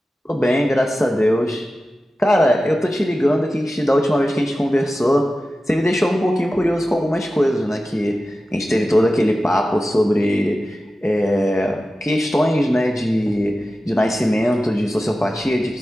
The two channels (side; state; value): both; normal; correlation 0.94